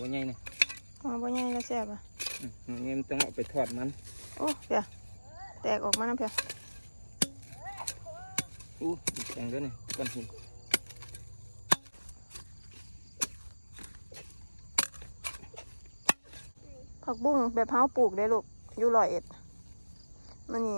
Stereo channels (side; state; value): both; inverted; correlation -1.00